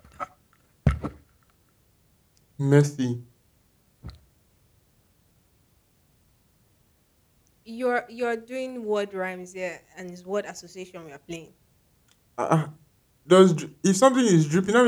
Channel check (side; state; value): both; identical; correlation 1.00